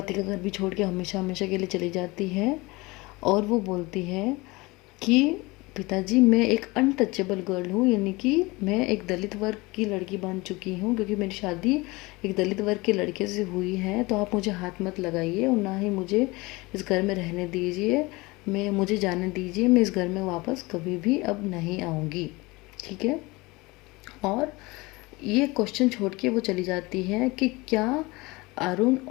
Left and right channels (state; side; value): quieter; right; 23.3 dB